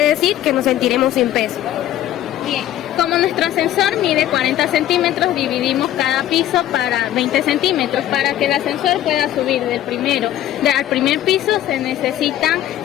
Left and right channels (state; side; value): quieter; right; 12.7 dB